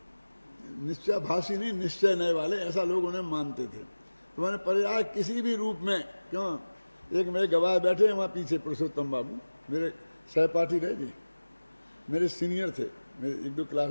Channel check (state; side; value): inverted; both; correlation -1.00